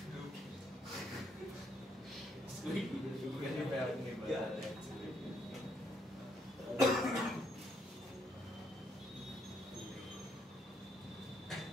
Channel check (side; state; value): both; normal; correlation 0.73